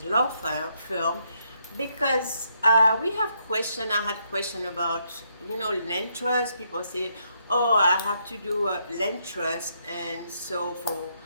Law Firm because we have I had question about, land trust. People say, oh, I have to do a land trust, and so for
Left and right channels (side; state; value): both; inverted; correlation -0.76